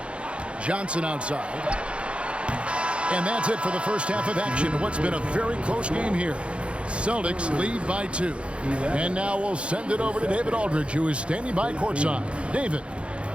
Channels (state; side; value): late; left; 0.059 ms